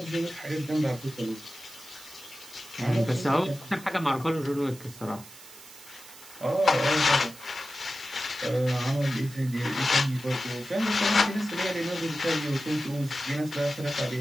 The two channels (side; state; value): right; noise; hiss, 18 dB below the sound